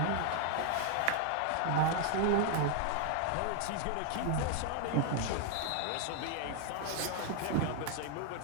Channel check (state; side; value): different; both; correlation 0.00